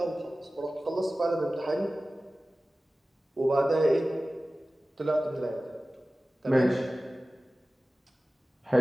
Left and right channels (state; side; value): normal; both; correlation 0.96